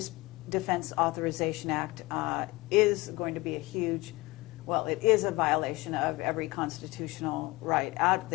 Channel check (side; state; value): right; quieter; 21.6 dB